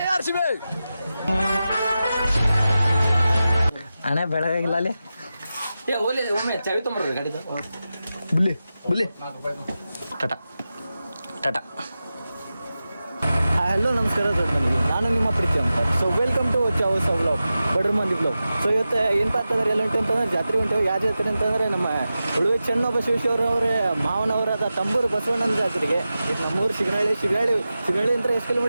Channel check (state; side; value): inverted; both; correlation -0.93